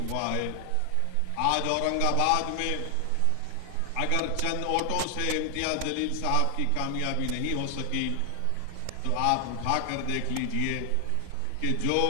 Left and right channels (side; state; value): both; different; correlation 0.00